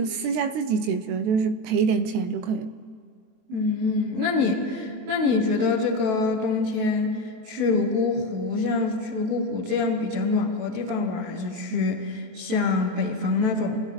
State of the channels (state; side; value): late; left; 23 ms